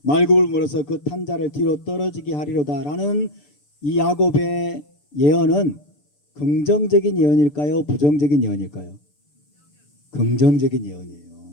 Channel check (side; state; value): right; late; 6.8 ms